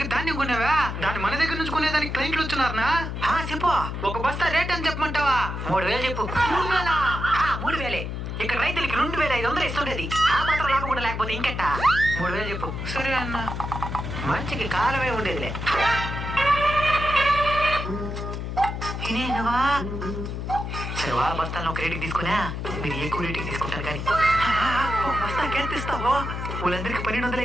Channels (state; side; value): noise; left; hum, 5 dB below the sound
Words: ధాన్యం కొన్నావా? దాన్ని మన దగ్గర నుంచి కొనేదానికి క్లయింట్లు వచ్చున్నారనా? చెప్పు. ఒక బస్తా రేట్ అని చెప్పమంటావా? 3000 చెప్పు. 3000. ఇక్కడ రైతులకి 2500 ఇస్తుండేది. ఆ మాత్రం లాభం కూడా లేకపోతే ఇంకెట్ట? 3000 చెప్పు. సరే అన్న. మంచికి కాలమే ఉండేదిలే. ఇదేనవా? సరే వాళ్ళ బస్తాలను ఒక రేటుకి తీసుకున్నా, మీరు ఎక్కువ రేటుకి తీసుకుంటారు కానీ బస్తాకి ఎంత ఇస్తావో? వాళ్ళందరికీ 1200